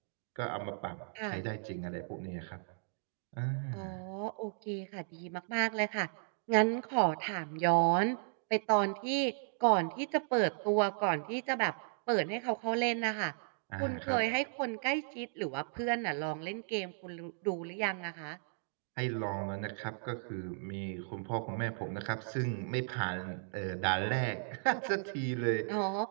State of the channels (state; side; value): silent; left; digital silence